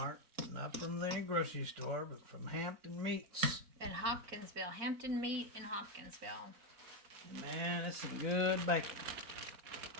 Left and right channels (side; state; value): left; late; 4.0 ms